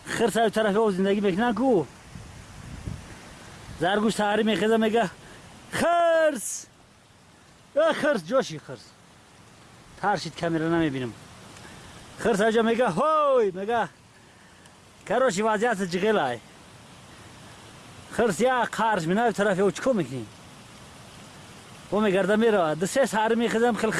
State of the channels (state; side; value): identical; both; correlation 1.00